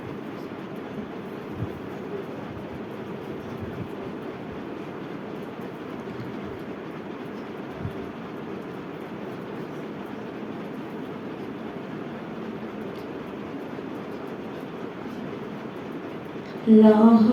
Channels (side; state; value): both; identical; correlation 1.00